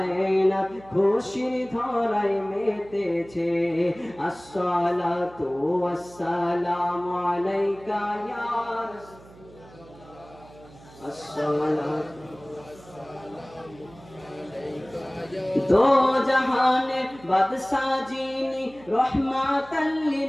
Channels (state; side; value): noise; right; hum, 22 dB below the sound